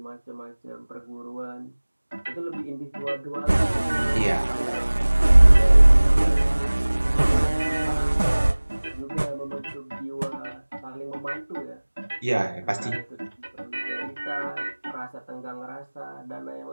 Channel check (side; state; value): both; inverted; correlation -1.00